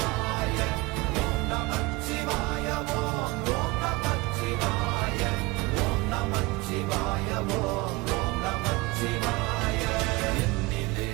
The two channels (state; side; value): quieter; left; 22.9 dB